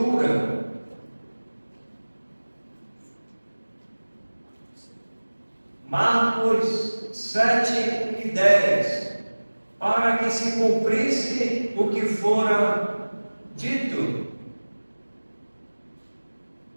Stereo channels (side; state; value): both; inverted; correlation -1.00